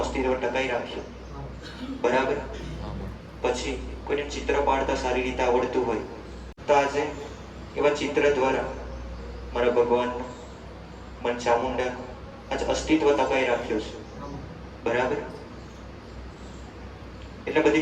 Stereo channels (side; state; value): both; identical; correlation 1.00